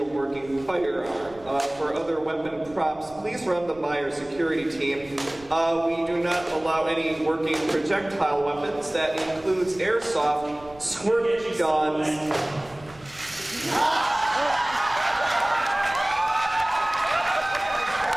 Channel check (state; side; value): noise; right; rumble, 24 dB below the sound